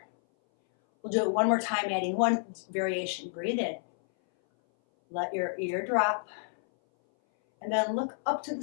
We'll do it one more time, adding one variation. Breathe in. Let your ear drop. And then look up to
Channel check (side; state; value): right; silent; 58 dB below the other